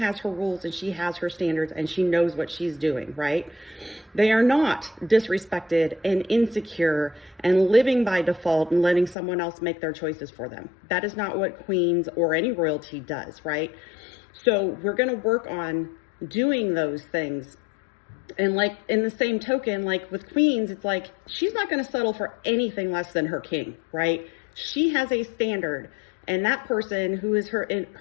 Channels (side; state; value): right; drops out; at 9.2 s